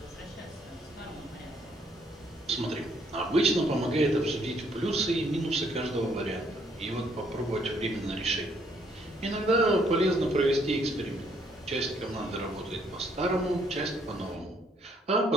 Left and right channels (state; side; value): normal; both; correlation 0.68